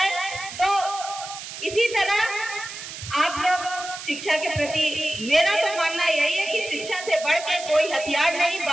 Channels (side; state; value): right; noise; hiss, 10 dB below the sound